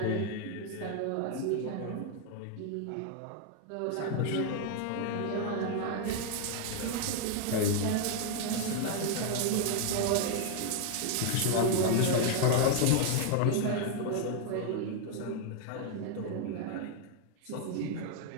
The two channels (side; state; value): both; different; correlation 0.00